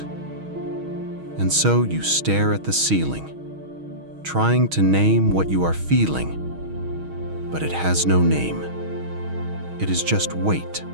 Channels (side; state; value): left; late; 6.3 ms